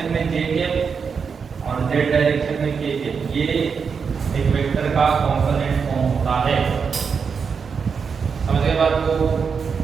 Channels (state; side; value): quieter; left; 5.9 dB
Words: में j के और z डायरेक्शन में k के। ये एक वेक्टर का कंपोनेंट फॉर्म होता है। समझ गए बात को।